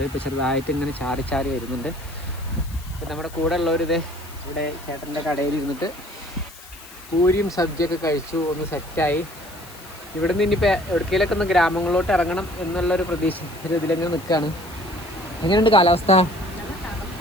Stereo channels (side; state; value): left; noise; hiss, 19 dB below the sound